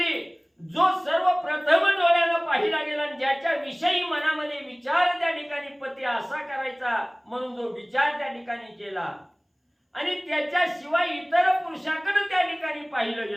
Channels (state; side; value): identical; both; correlation 1.00